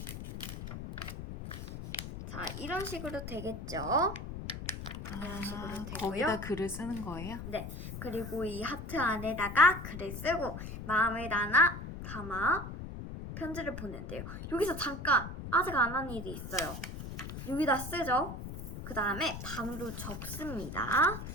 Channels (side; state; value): left; noise; rumble, 8 dB below the sound